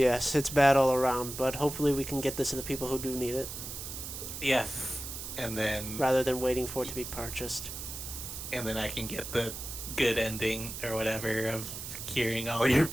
it's bad all around, but hopefully we can get this to the people who do need it, Yes, and then rather than waiting for it to be purchased. I can get the good ending or whatever of curing all your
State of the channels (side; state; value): right; noise; hiss, 8 dB below the sound